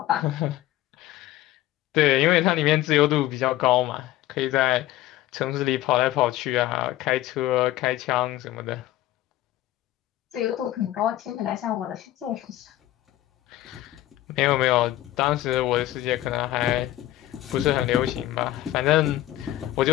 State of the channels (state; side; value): quieter; right; 14.7 dB